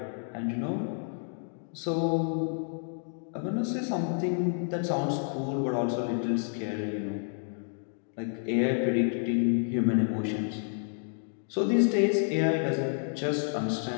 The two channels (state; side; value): silent; right; digital silence